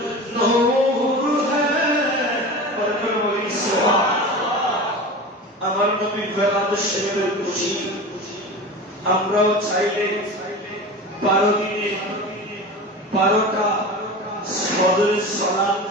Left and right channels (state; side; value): normal; both; correlation 0.31